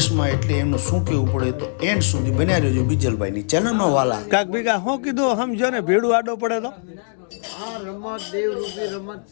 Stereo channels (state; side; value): silent; right; digital silence